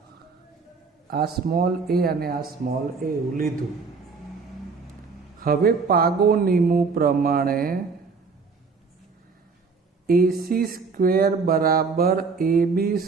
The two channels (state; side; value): quieter; left; 4.8 dB